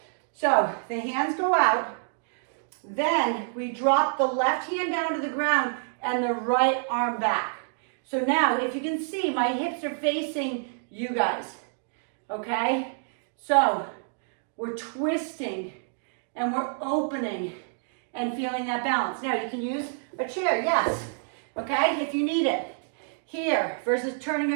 So the hands go out. Then we drop the left hand down to the ground and the right arm back. So now, if you can see, my hips are facing you guys. Okay? So we're twisting and we're opening and feeling that balance. Now you can use a chair, yes. Okay, if you need it. Here, versus turning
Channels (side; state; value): left; silent; digital silence